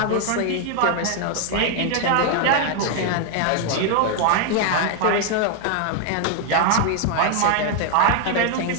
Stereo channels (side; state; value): both; different; correlation 0.00